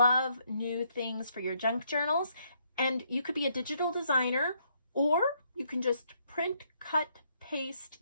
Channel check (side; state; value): both; inverted; correlation -0.72